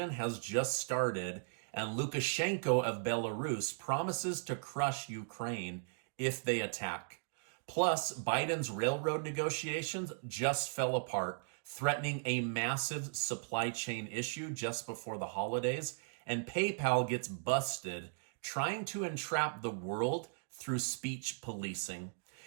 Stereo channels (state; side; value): silent; left; digital silence